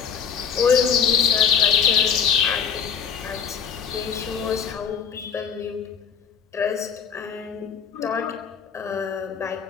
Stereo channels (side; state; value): right; quieter; 7.1 dB